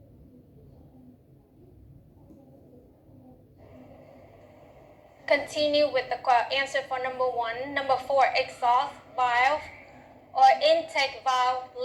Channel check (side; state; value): both; identical; correlation 1.00